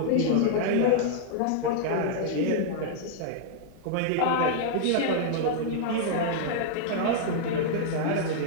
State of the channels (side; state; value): both; different; correlation -0.01